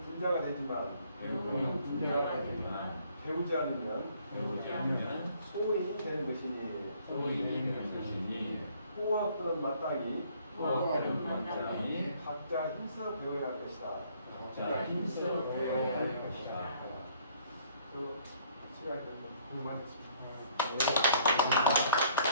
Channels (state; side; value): inverted; both; correlation -0.61